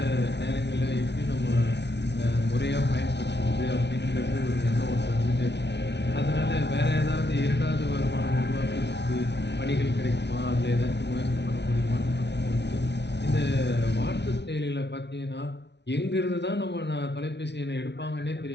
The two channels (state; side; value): late; right; 0.50 ms